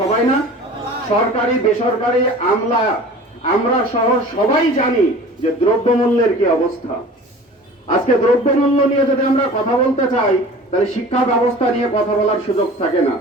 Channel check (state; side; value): normal; both; correlation 0.42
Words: না? সরকারি বেসরকারি আমরা সহ সবাই জানি যে দ্রব্যমূল্যের কি অবস্থা। আজকে দ্রব্যমূল্য নিয়ে যদি আমরা কথা বলতে চাই তাহলে শিক্ষা ব্যবস্থা নিয়ে কথা বলার সুযোগ থাকে না।